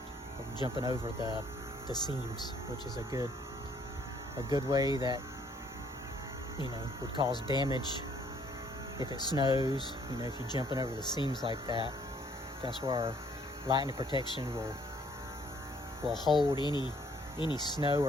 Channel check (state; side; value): normal; both; correlation 0.64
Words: jumping over the seams, which is a good way that would cause damage if it snows. If you're jumping over the seams like that, that's where our lightning protection will hold any snow